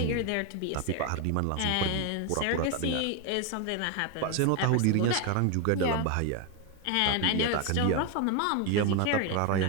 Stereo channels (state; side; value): different; both; correlation 0.01